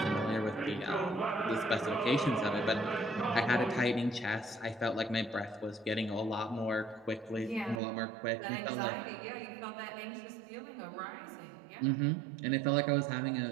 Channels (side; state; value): left; drops out; at 7.8 s